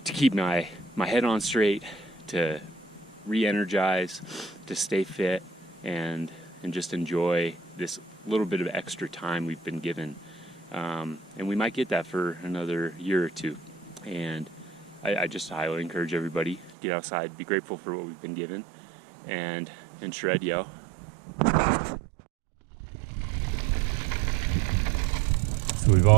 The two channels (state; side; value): drops out; left; at 16.7 s